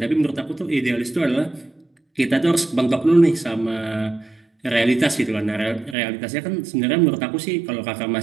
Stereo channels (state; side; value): drops out; left; at 6.0 s